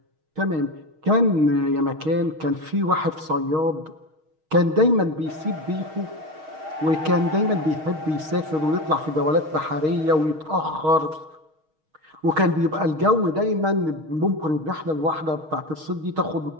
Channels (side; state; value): left; late; 6.4 ms